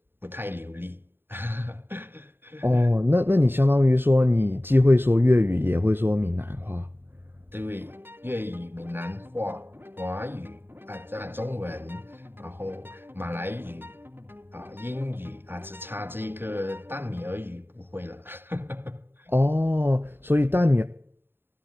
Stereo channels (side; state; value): left; late; 0.10 ms